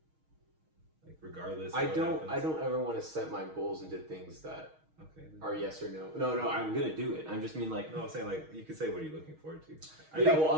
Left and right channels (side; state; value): left; late; 6.4 ms